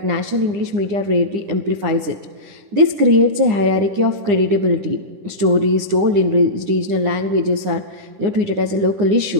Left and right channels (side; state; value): left; late; 9.9 ms